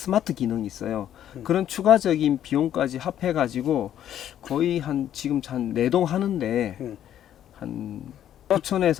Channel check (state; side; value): quieter; right; 10.9 dB